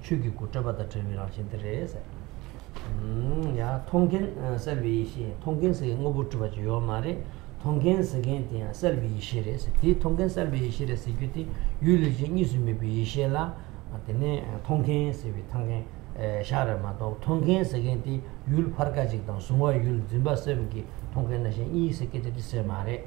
잡아다 들이랑 신들에서 야 통계 서비스 통계에서 응어부터 봐줘 요 말에 통계 세계에 서비스에서 디 통계 서비스에서 이게 율리지 이스미 비셰라 아테네 통계 서비스 통계 샤르마도 통계 세계에 율 파르가직 당 수와 율 짐바세기 통계 나시 이 세계에 있어 말에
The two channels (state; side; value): quieter; left; 21.4 dB